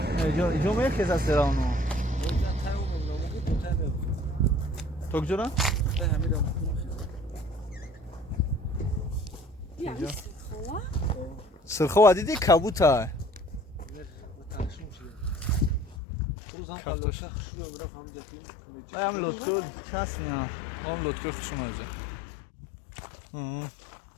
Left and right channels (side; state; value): right; drops out; at 16.0 s